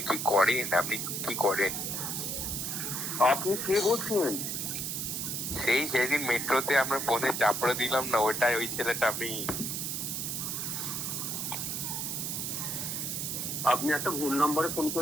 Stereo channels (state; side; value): noise; right; hiss, 2 dB below the sound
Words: কি করেন? আপনি কি করেন? আপনি কে বলছেন? সেদিন মেট্রোতে আমরা ফোনে চাপড়ে দিলাম না, ওটাই ওই ছেলেটা আমি। আপনি একটা ভুল নম্বরে ফোন